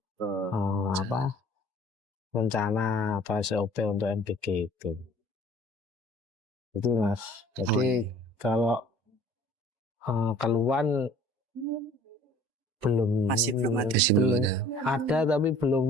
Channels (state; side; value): late; left; 2.4 ms